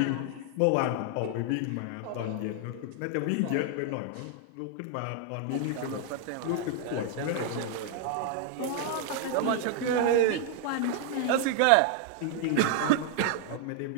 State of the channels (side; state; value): both; different; correlation 0.00